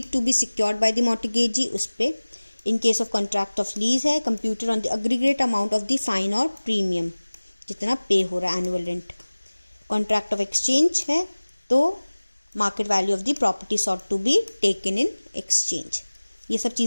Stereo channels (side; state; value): both; inverted; correlation -1.00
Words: to be secured by the mortgagee उस पे। In case of contract of lease है computer on the aggregate amount of the fine और प्रीमियम, जितना पे हो रहा है annual rent. Contract of exchange है तो market value of the property sought to be taken in exchange. ये सब